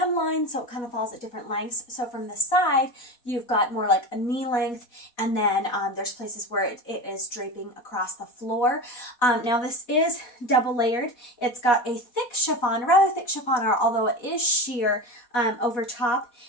so it kind of falls at different lengths. So from the side, you've got more like a knee length, and then there's places where it is draping across the floor. Now this is double layered. It's got a thick chiffon, rather thick chiffon, although it is sheer over top.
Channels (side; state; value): right; late; 4.1 ms